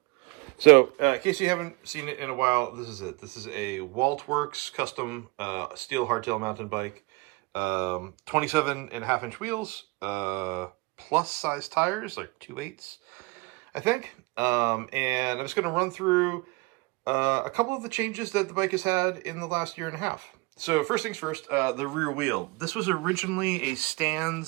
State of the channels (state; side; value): quieter; left; 24.6 dB